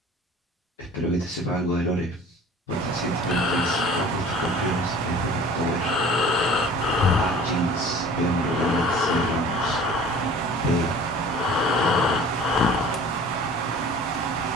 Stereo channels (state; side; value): normal; both; correlation 0.45